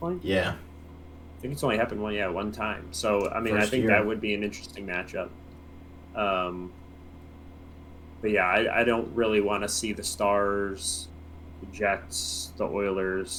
Yeah. I think it's only happened one time. So I mean, I think that would be an interesting matchup. But yeah, I don't really want to see the Stars, the Jets, the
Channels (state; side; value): identical; both; correlation 1.00